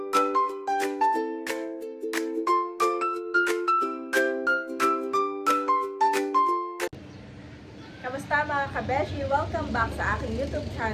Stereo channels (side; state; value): both; identical; correlation 1.00